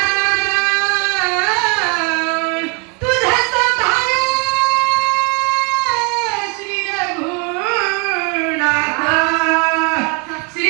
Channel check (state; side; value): quieter; left; 32.4 dB